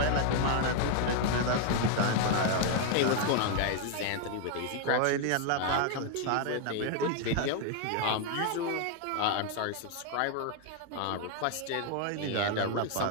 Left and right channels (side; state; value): both; different; correlation 0.01